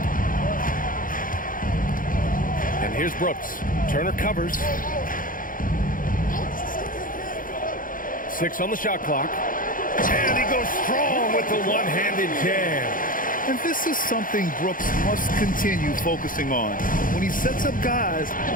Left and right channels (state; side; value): late; right; 0.40 ms